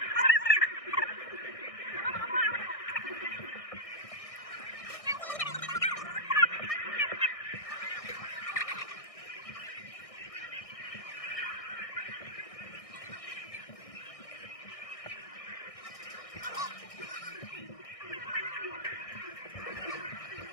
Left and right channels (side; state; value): right; late; 1.6 ms